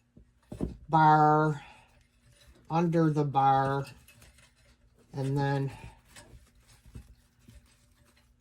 bar, under the bar, and then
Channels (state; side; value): identical; both; correlation 1.00